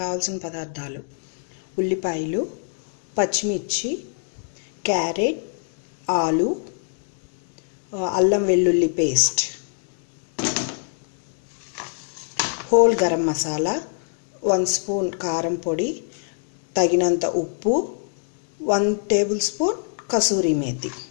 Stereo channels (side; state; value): right; silent; digital silence